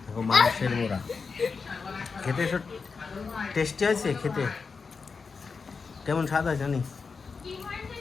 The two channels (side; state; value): right; quieter; 5.0 dB